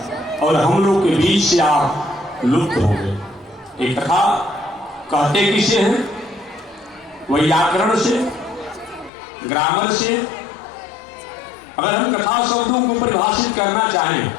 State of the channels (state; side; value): drops out; right; at 9.1 s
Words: और हम लोग के बीच से आप लुप्त हो गए। ये कथा कहते किसे हैं? व्याकरण से, ग्रामर से। अगर हम कथा शब्दों को परिभाषित करना चाहें